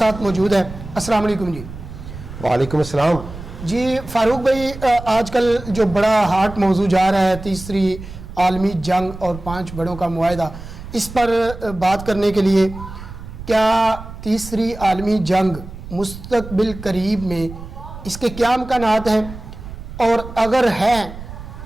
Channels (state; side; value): noise; right; rumble, 13 dB below the sound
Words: موجود ہے۔ السلام علیکم جی۔ وعلیکم السلام جی فاروق بھائی، آج کل جو بڑا ہاٹ موضوع جا رہا ہے تیسری عالمی جنگ اور 5 بڑوں کا معاہدہ، اس پر بات کرنے کے لیے کیا تیسری عالمی جنگ مستقبل قریب میں اس کے کیا امکانات ہیں، اور اگر ہیں